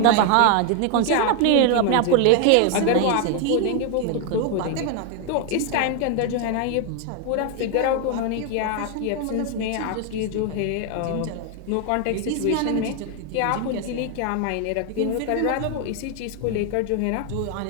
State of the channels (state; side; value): different; both; correlation 0.01